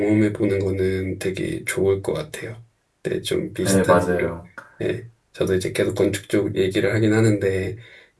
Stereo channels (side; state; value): both; identical; correlation 1.00